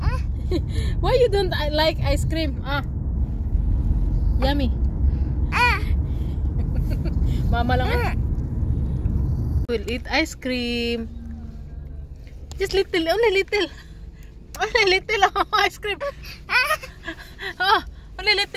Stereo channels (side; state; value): both; identical; correlation 1.00